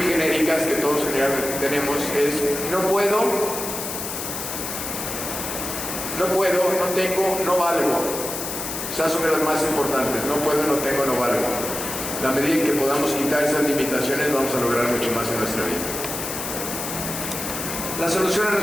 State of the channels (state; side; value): noise; left; hiss, 5 dB below the sound